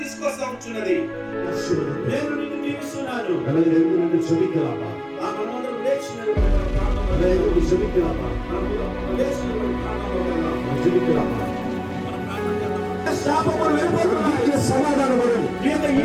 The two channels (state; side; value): identical; both; correlation 1.00